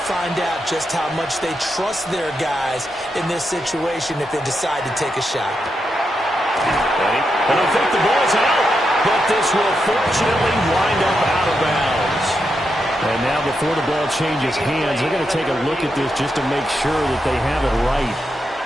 find out just how much they trust their guys in this situation if they decide to take a shot. And I think the ball's out, but this will fortunately wind up out of bounds. And now before the ball changes hands, they're going to take a look at this just to make sure that they have it right.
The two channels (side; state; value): both; normal; correlation 0.85